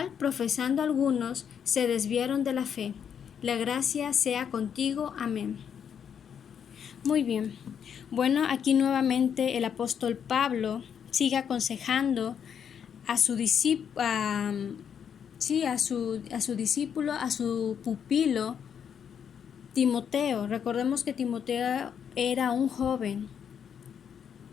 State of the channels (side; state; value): right; quieter; 7.9 dB